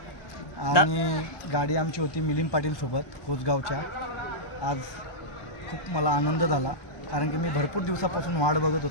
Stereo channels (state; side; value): late; right; 1.2 ms